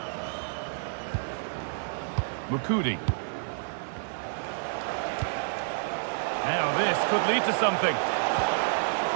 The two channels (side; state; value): left; silent; 57 dB below the other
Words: Mukudi. Now this could lead to something.